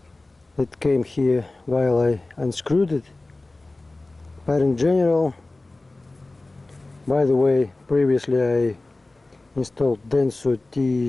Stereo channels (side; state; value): right; quieter; 3.0 dB